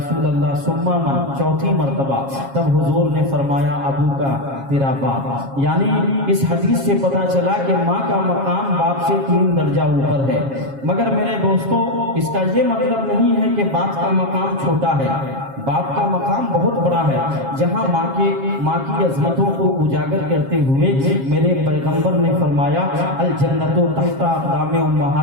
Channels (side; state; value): left; late; 7.4 ms